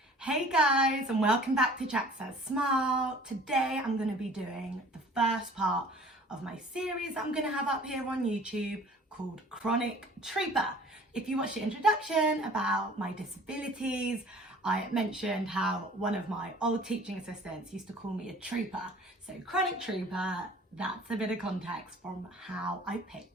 Hey guys, and welcome back to JacsSaysSmile. Today I'm going to be doing the first part of my series I'm going to have up here on YouTube called Chronic Trooper. If you watched the introduction about my disabilities, I mentioned how one of my old teaching assistants used to call me a trooper. So Chronic Trooper, that's a bit of context from how I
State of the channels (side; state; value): both; normal; correlation 0.49